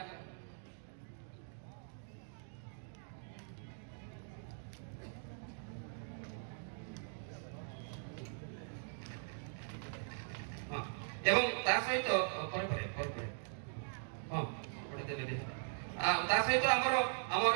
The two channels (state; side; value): silent; left; digital silence